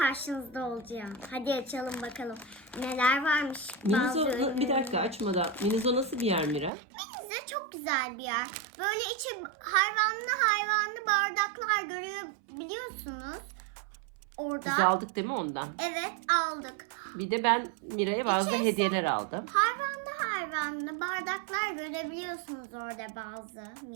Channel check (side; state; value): left; drops out; at 6.7 s